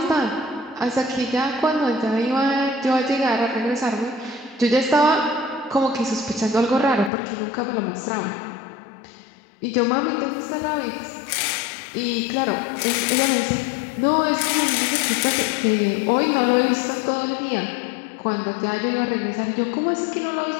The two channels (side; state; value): right; drops out; at 7.1 s